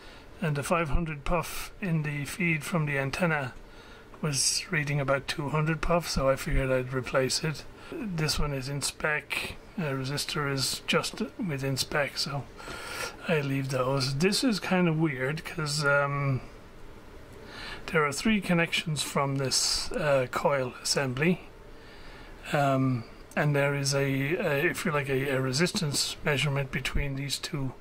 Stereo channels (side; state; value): both; identical; correlation 1.00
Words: and the 500 puff in the feed from the antenna was reading about 200 puff, so I figured I'd replace it. This one is in spec, resistor is just within spec, so I leave those. This is kind of weird because there are 3 connections from this coil assembly. And there is if you like, a resistance measurement between these two